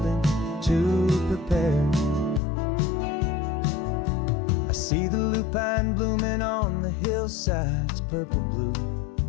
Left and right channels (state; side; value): drops out; right; at 2.4 s